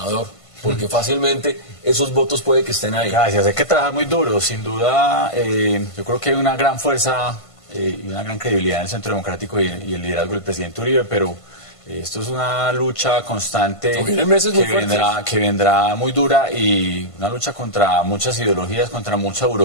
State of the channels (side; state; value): right; late; 1.5 ms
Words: porque fácilmente esos votos puede que estén ahí. Gracias, hay que trabajar muy duro, sin duda. Yo creo que hay una gran fuerza y una gran credibilidad en el Centro Democrático y el liderazgo del presidente Uribe, pero esto es una lucha constante que vendrá muy dura y una lucha contra muchas ideologías, contra mucha